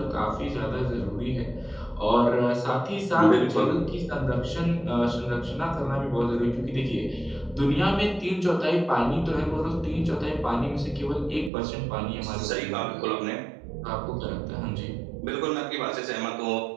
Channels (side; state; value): left; drops out; at 11.5 s